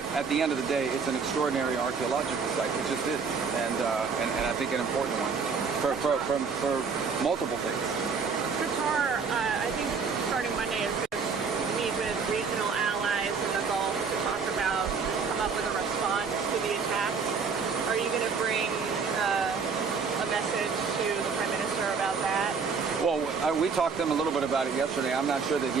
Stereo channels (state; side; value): quieter; left; 5.4 dB